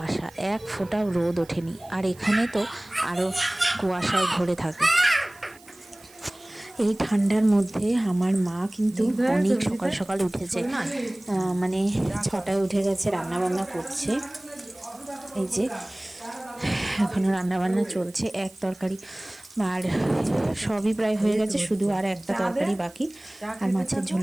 এক ফোঁটাও রোদ ওঠেনি। আর এখানে তো আরও কুয়াশায় ভরে থাকে। এই ঠান্ডার মধ্যে আমার মা কিন্তু অনেক সকাল সকাল উঠেছে, মানে 6টায় উঠে গেছে, রান্নাবান্না করছে। এই যে এখনও রান্নাবান্না চলছে, এক তরকারি আর সবই প্রায় হয়ে গেছে, শুধু আর একটা তরকারি বাকি, আর মাছের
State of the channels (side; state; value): right; noise; hiss, 25 dB below the sound